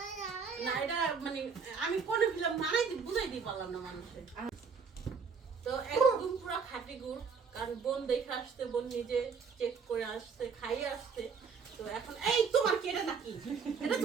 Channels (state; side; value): quieter; left; 5.7 dB